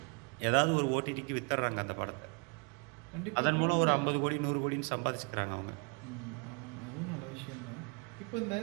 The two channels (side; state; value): left; quieter; 33.4 dB